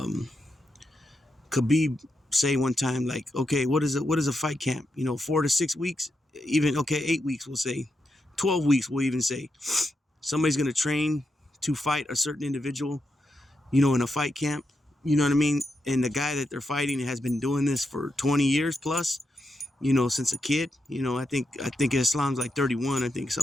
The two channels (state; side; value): normal; both; correlation 0.85